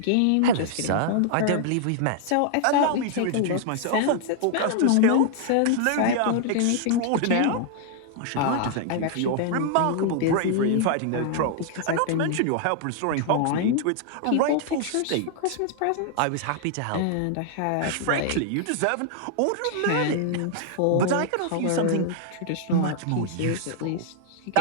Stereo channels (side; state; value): both; different; correlation -0.01